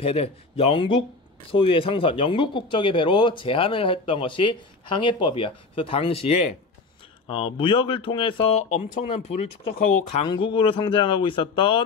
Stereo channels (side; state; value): right; quieter; 3.9 dB